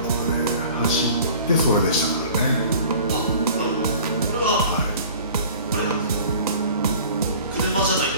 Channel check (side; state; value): both; inverted; correlation -0.46